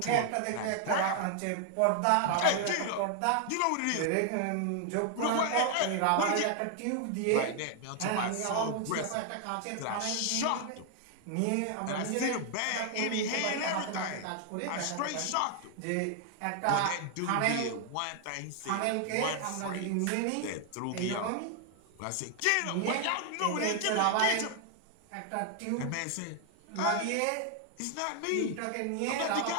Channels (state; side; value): different; both; correlation 0.00